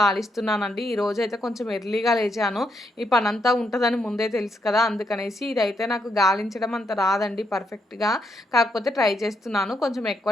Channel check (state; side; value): normal; both; correlation 0.78